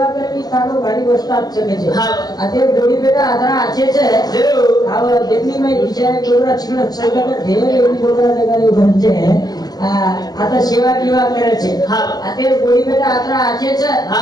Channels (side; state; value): right; late; 0.19 ms